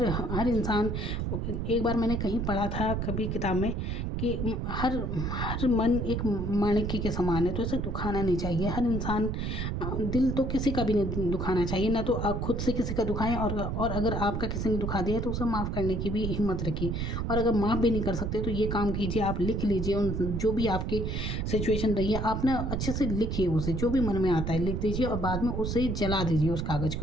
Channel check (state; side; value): noise; right; rumble, 2 dB below the sound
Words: इंसान, एक बार मैंने कहीं पढ़ा था कभी किताब में कि हर हर मन एक माणिक्य के समान है, तो इसे दुखाना नहीं चाहिए। हर इंसान, दिल तो किसी का भी नहीं दुखाना चाहिए, ना तो आप खुद से किसी का दुखाएं, और अगर आपका किसी ने दुखा दिया है तो उसे माफ़ करने की भी हिम्मत रखिए। और अगर माफ़ भी नहीं कर सकते तो ये काम कीजिए, आप लिख लीजिए उन जो भी आपकी सिचुएशन रही है, आप ना अच्छे से लिखिए, उसे जो भी मन में आता है लिख दीजिए और बाद में उसे जला दीजिए उस कागज़